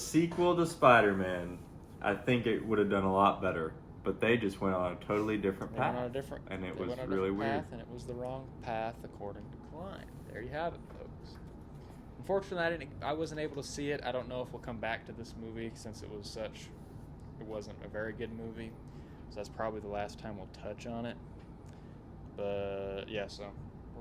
to Spider-Man, I think it would have done a lot better. But they just went on a totally different path. And it was really weird. And it was the wrong path, according to Klein. There you have it, folks. Unfortunately, I wasn't able to see it. I don't know if we'll come back to this movie since it wasn't a very good movie. So that's probably the last time we'll touch on it. But yeah, so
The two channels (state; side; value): identical; both; correlation 1.00